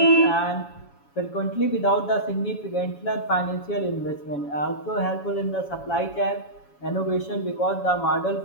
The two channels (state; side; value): late; right; 7.1 ms